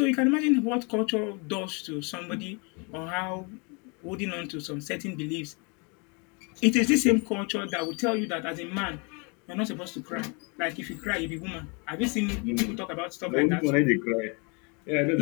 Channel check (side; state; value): right; quieter; 32.7 dB